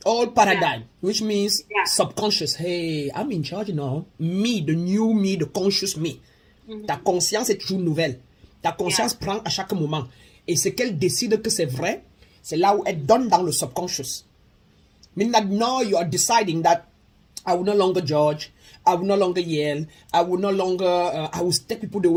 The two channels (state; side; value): identical; both; correlation 1.00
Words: paradigm, which means subconscious. Hey, I'm in charge now. Me, the new me, the conscious me. Ta conscience est toujours nouvelle. Ta conscience prend à chaque moment. Et ce qu'elle décide que c'est vrai, c'est là où elle donne dans le subconscious. Meaning that now you are deciding that I will no longer judge, I will no longer yell, I will no longer, I will take people the